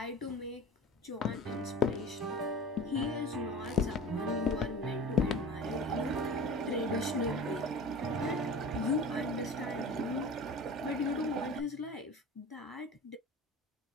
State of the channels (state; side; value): normal; both; correlation 0.36